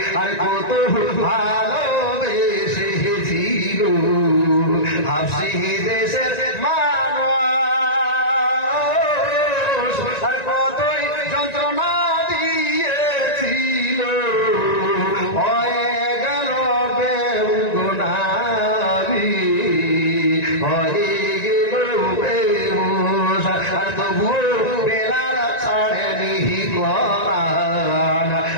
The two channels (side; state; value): right; late; 1.9 ms